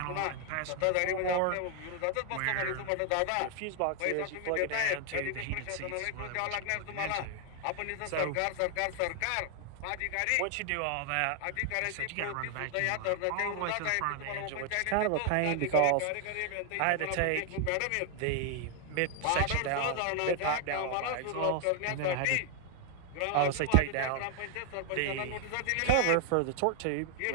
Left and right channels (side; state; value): both; different; correlation 0.00